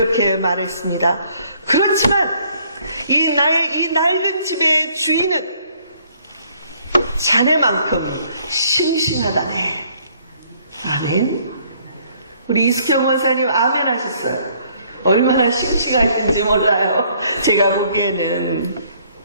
말했습니다. 그렇지만 나의 이 낡은 집의 주인은 자네만큼 싱싱하다네. 아멘. 우리 이숙경 원사님 아멘 하셨어요. 얼마나 싱싱하신지 몰라요. 제가 보기에는.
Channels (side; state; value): both; inverted; correlation -0.63